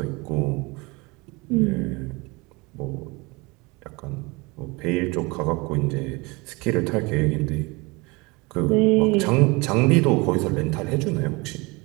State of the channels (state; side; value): quieter; left; 25.6 dB